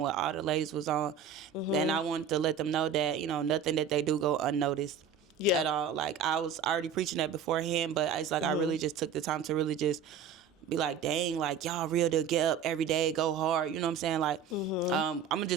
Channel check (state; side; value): quieter; left; 6.7 dB